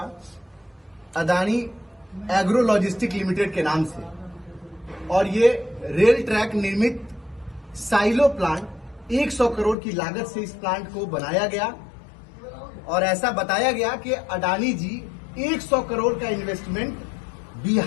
अडानी एग्रो लॉजिस्टिक लिमिटेड के नाम से। और ये रेल ट्रैक निर्मित साइलो प्लांट 100 करोड़ की लागत से इस प्लांट को बनाया गया। और ऐसा बताया गया कि अडानी जी 100 करोड़ का इन्वेस्टमेंट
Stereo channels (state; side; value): drops out; right; at 9.8 s